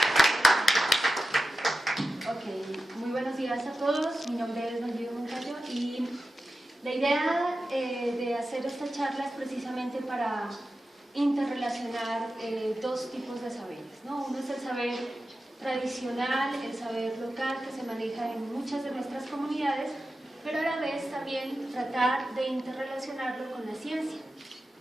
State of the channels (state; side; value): normal; both; correlation 0.92